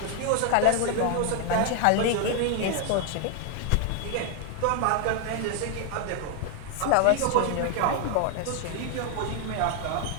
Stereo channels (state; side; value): different; both; correlation 0.01